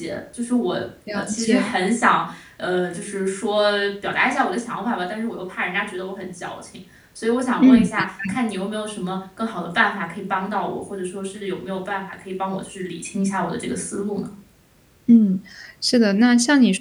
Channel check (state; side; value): identical; both; correlation 1.00